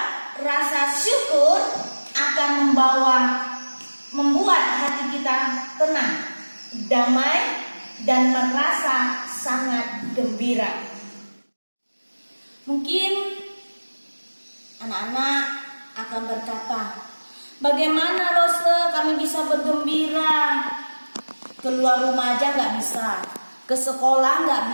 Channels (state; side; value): inverted; both; correlation -1.00